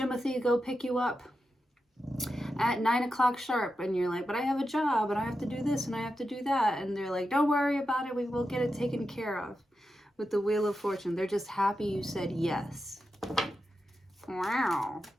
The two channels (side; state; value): both; normal; correlation 0.89